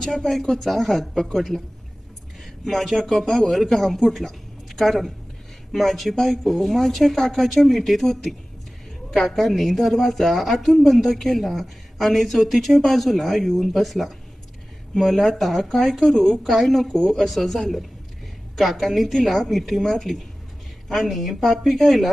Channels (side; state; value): both; normal; correlation 0.97